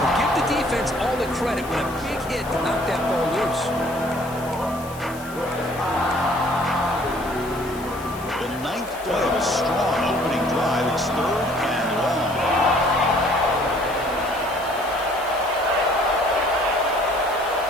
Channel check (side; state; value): left; noise; hiss, 18 dB below the sound